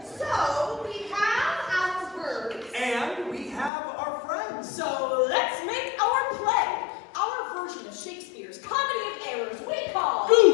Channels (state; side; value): drops out; right; at 3.7 s